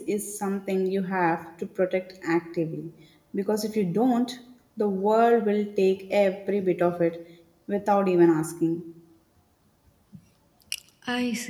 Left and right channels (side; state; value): both; identical; correlation 1.00